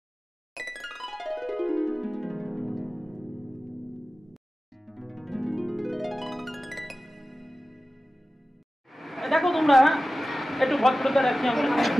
দেখো তোমরা একটু ভদ্রতা রাখি আমরা।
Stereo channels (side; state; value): both; normal; correlation 0.95